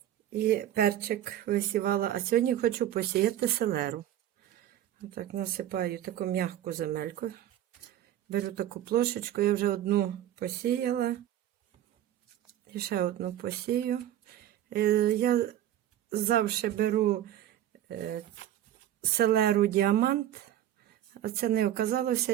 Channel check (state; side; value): quieter; left; 12.0 dB